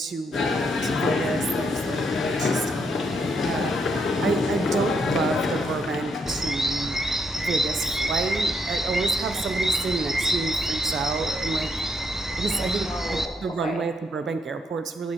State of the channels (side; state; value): both; normal; correlation 0.75